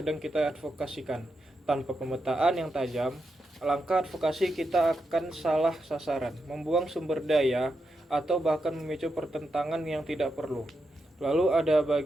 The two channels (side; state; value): both; normal; correlation 0.85